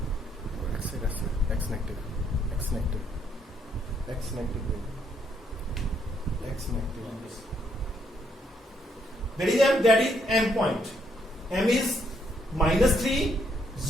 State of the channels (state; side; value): normal; both; correlation 0.72